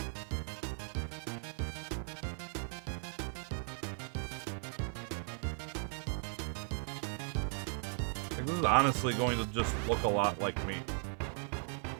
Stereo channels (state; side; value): silent; left; 53 dB below the other